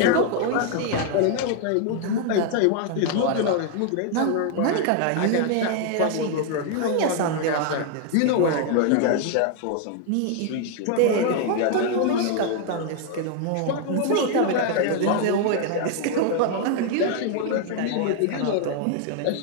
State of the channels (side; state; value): both; different; correlation 0.00